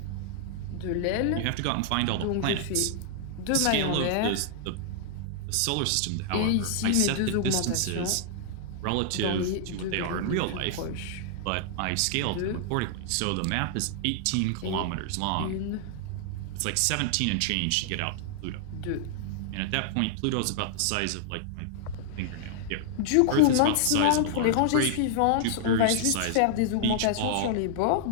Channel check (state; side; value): different; both; correlation -0.01